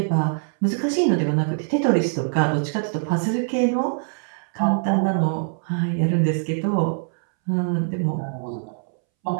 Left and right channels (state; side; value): silent; left; 63 dB below the other